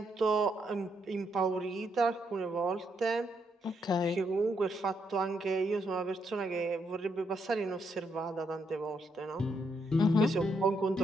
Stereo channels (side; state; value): both; normal; correlation 0.77